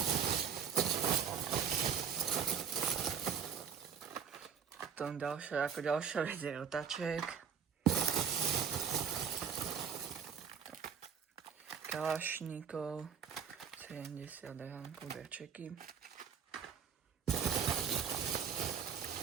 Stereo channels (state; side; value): quieter; left; 7.2 dB